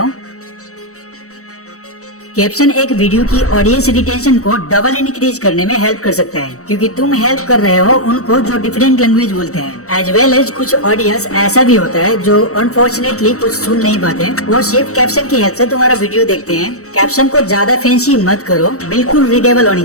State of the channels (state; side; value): late; right; 0.65 ms